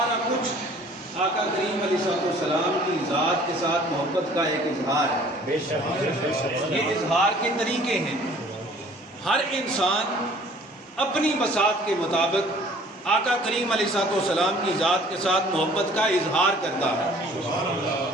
کچھ آقا کریم علیہ السلام کی ذات کے ساتھ محبت کا ایک اظہار ہے۔ یہ اظہار کے طریقے ہیں، ہر انسان اپنی بساط کے مطابق آقا کریم علیہ السلام کی ذات کے ساتھ محبت کا اظہار کرتا ہے۔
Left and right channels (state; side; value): normal; both; correlation 0.53